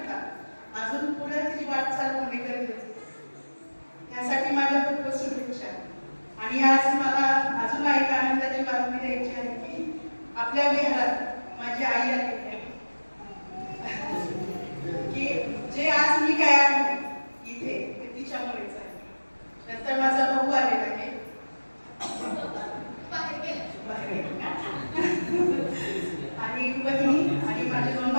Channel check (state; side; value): inverted; both; correlation -1.00